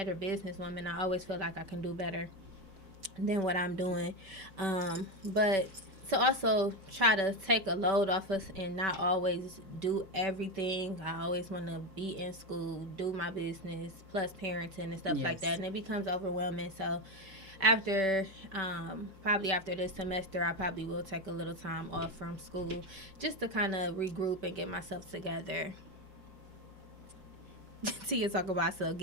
businesswoman. I always feel like I can do better than what I'm doing. But to also try to take a load off us and not always do everything. I always want to be in school, do my business, plus parenting and stuff like that. And it becomes overwhelming. So after probably after this semester, I probably will take a little time off from school just to kind of regroup and get myself together. Tia talk about, so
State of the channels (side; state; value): left; late; 5.2 ms